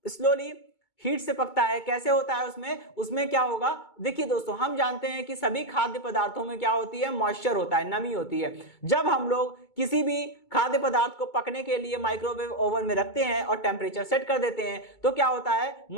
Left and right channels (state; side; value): late; right; 2.2 ms